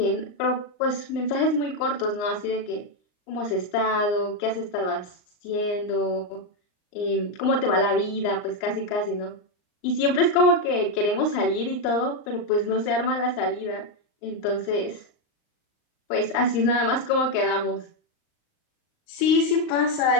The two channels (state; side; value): late; right; 39 ms